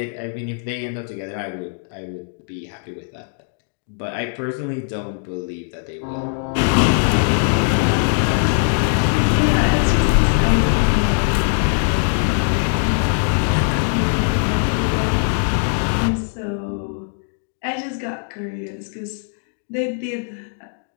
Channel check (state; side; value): silent; right; digital silence